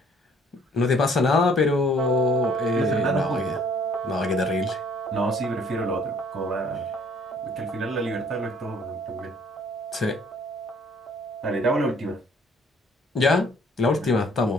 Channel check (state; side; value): normal; both; correlation 0.59